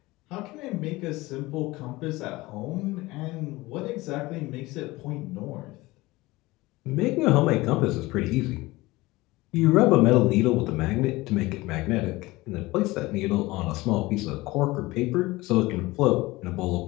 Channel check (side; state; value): right; quieter; 20.4 dB